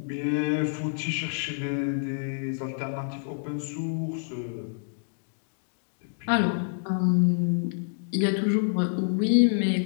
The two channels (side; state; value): right; silent; digital silence